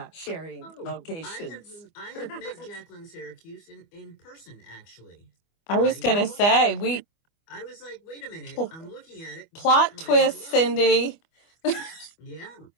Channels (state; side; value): late; right; 25 ms